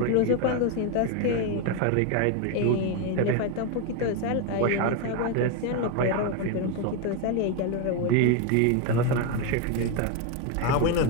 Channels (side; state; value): both; different; correlation 0.02